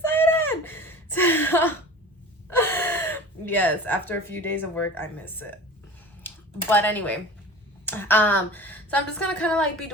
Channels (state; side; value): normal; both; correlation 0.37